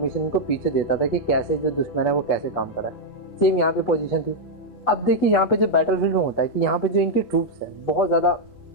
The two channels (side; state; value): right; late; 8.2 ms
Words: इनको पीछे देता था कि कैसे जो दुश्मन है वो कैसे काम कर रहा है। सेम यहाँ पे पोजीशन थी। अब देखिए यहाँ पे जो बैटल फील्ड में होता है कि यहाँ पे जो इनके ट्रूप्स हैं बहुत ज़्यादा